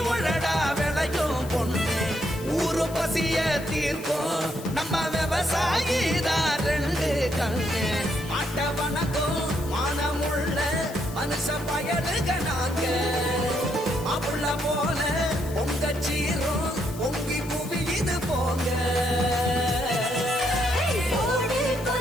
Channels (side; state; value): left; noise; hiss, 17 dB below the sound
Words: உழடா விளையும் பொண்ணு ஊரு பசிய தீர்க்கும் நம்ம விவசாயி தான் ரெண்டு கண்ணு மாட்ட வணக்கம் மானமுள்ள மனுஷ பயலுக நாங்க அப்புள்ள போல பொங்க சீரும் பொங்கி புவி இது போங்க